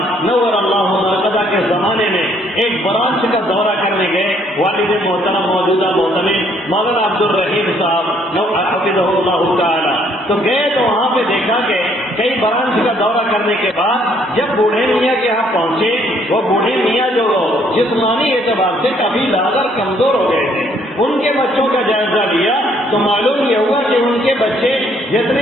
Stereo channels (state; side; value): normal; both; correlation 0.66